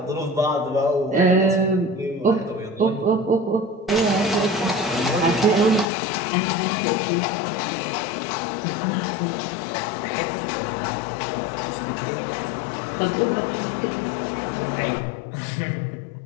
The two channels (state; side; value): drops out; right; at 5.9 s